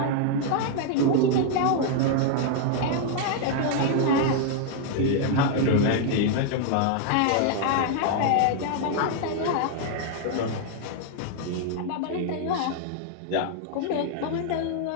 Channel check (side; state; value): both; different; correlation 0.00